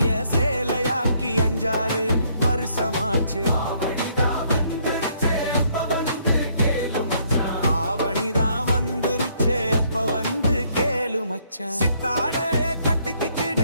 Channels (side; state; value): both; inverted; correlation -0.68